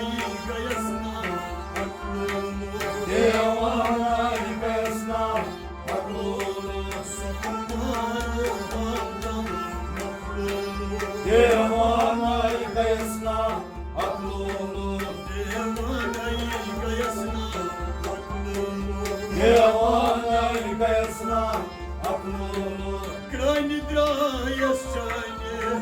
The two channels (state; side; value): identical; both; correlation 1.00